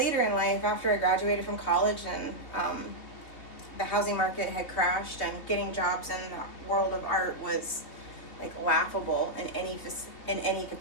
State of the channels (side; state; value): right; late; 3.4 ms